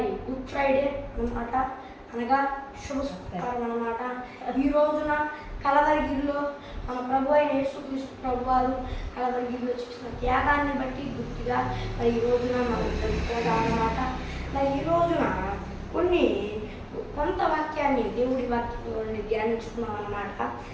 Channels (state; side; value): identical; both; correlation 1.00